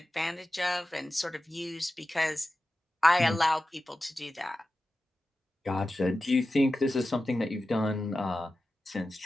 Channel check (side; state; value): both; normal; correlation 0.93